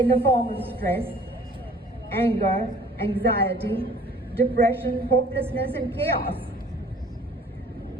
the form of stress, anger, anxiety, depression, hopelessness, and chaos.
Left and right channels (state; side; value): normal; both; correlation 0.53